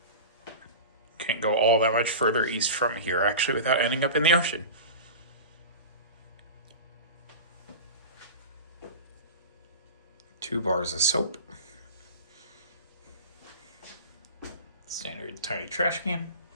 Can't go all that much further east from here, actually, without ending up in the ocean. Two bars of soap. Standard tiny trash can.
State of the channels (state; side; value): inverted; both; correlation -0.31